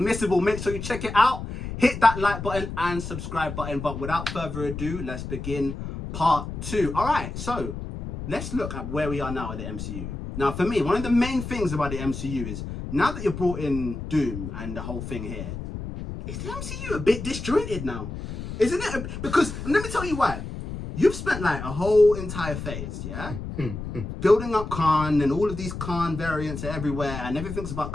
make sure you check it out. Hit that like button and subscribe button. But without further ado, let's begin part 2. Alright, so let's look at where we are now at the MCU. Now for me, one of the main things about the MCU is, now that you've brought in Doom and the whole thing here, is the MCU a bit disjointed now? Isn't it? Because, let me tell you why. You've spent like a whole entire phase, yeah? Building up Khan, and all of these Khan variants are everywhere, and everything's about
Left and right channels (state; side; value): noise; left; rumble, 7 dB below the sound